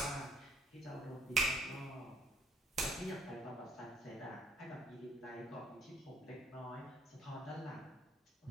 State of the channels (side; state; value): both; normal; correlation 0.62